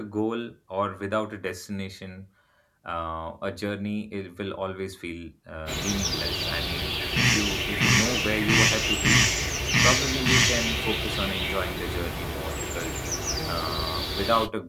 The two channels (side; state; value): both; identical; correlation 1.00